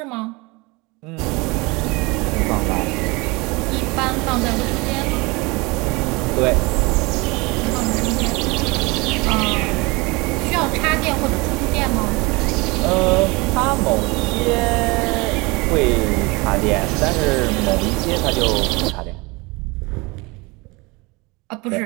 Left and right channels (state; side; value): quieter; left; 25.4 dB